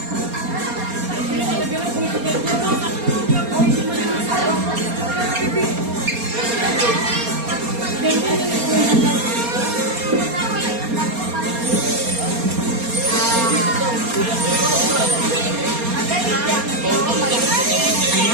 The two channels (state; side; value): late; left; 4.3 ms